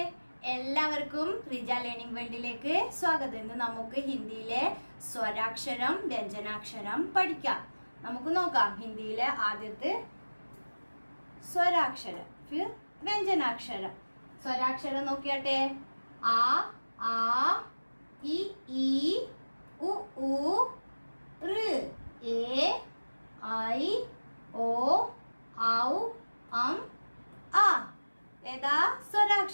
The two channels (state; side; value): inverted; both; correlation -1.00